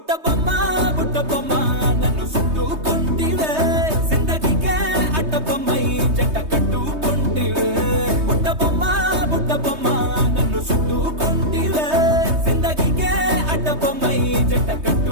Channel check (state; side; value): late; left; 3.2 ms